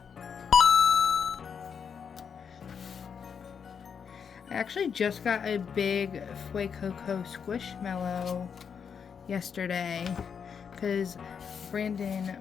I actually just got a big Fuecoco Squishmallow yesterday because Brandon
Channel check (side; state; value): right; quieter; 6.8 dB